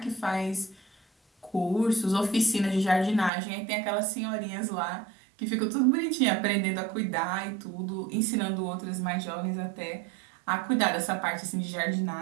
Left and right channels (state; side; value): drops out; left; at 3.3 s